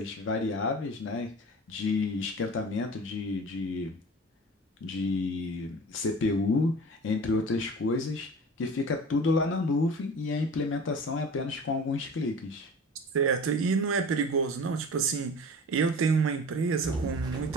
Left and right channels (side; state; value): both; normal; correlation 0.39